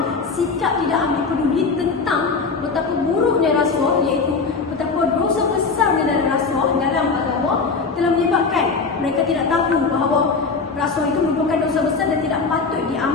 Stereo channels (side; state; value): right; quieter; 4.6 dB